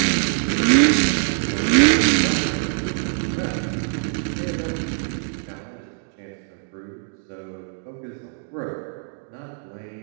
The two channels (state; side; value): silent; left; 59 dB below the other